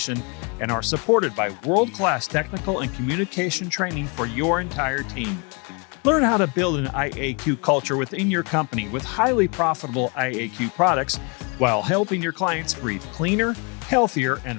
and are supported by world-class technical and communication training for your entire team. Learn how to build an IAQ culture within your company with highly profitable IAQ products while helping your clients breathe cleaner, healthier,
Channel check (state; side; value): quieter; right; 32.7 dB